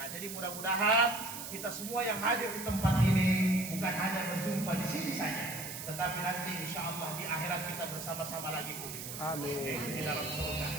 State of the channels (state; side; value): noise; right; hiss, 8 dB below the sound